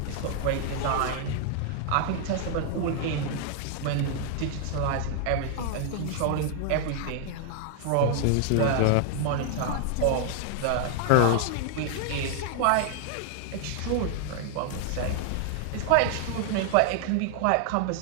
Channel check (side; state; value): both; different; correlation 0.00